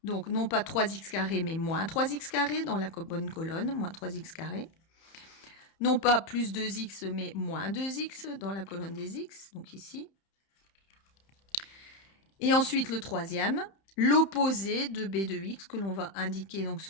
Donc, non pas 3x carré, mais moins 3x carré dans la bonne colonne, moins 3x carré. Non pas plus 2x, mais moins 2x dans la colonne des x, donc ici. Et ensuite, le troisième, l'opposé de b de x, que l'on va indiquer donc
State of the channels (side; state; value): right; late; 31 ms